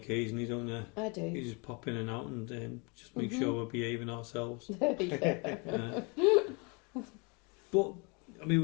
don't you? I do. You just pop in and out and just make sure we're behaving ourselves. But I mean,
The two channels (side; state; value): right; quieter; 31.6 dB